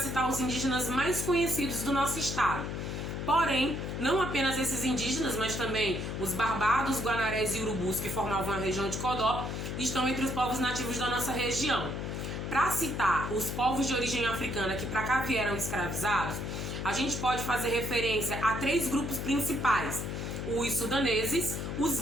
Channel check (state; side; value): noise; left; hum, 4 dB below the sound